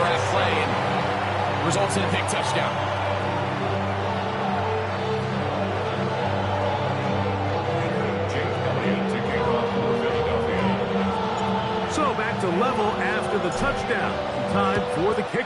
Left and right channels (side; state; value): both; identical; correlation 1.00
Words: at play and results in a big touchdown. So back to level after the touchdown. Time for the